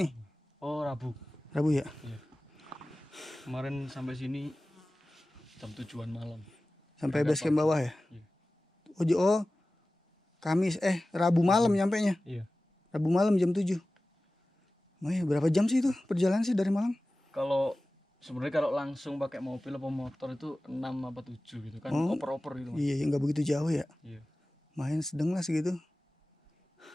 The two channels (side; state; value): both; normal; correlation 0.97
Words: Oh, Rabu. Rabu ya? Iya. Kemarin sampai sini jam 7-an malam. Sampai base camp bawah ya? Iya. Oh, Kamis Rabu malam nyampenya. Iya. Rabu malam jam 7. Berapa jam sih itu perjalanan sih dari Malang? Kalau sebenarnya kalau langsung pakai mobil atau motor itu 6 apa 7 gitu kan. Oh, Oper-oper gitu. Mas. Iya, nggak begitu jauh ya. Iya. Main sedang lah segitu.